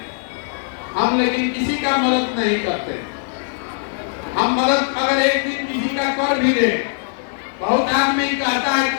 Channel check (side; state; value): right; silent; digital silence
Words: हम लेकिन किसी का मदद नहीं करते। हम मदद अगर एक दिन किसी का कर भी दे, बहुत आदमी कहता है